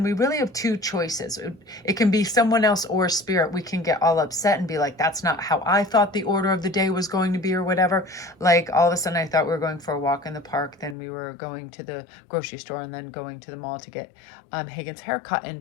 we really have two choices. It can be someone else or spirit. We can get all upset and be like, that's not how I thought the order of the day was going to be or whatever. Like all of a sudden I thought we were going for a walk in the park. Then we were going to the grocery store and then going to the mall to get Hagen's haircut.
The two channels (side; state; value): right; drops out; at 11.0 s